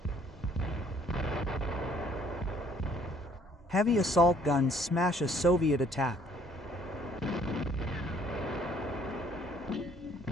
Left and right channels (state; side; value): normal; both; correlation 0.61